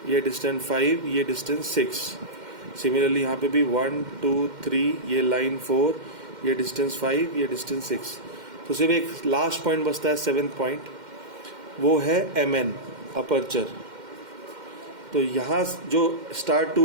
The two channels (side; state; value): left; late; 2.1 ms